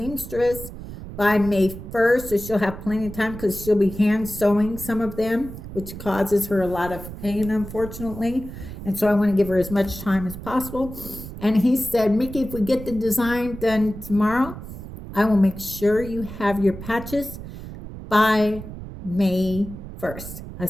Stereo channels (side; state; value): right; noise; rumble, 11 dB below the sound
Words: by May 1st. So she'll have plenty of time because she'll be hand sewing some of them, which causes her a lot of pain, unfortunately. And so I want to give her as much time as possible. And he said, Mickey, if we get the design done tomorrow, I will make sure you have your patches by May 1st. I